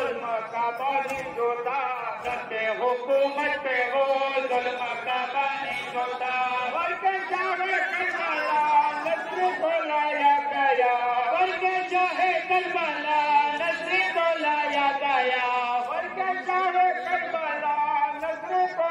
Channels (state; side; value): identical; both; correlation 1.00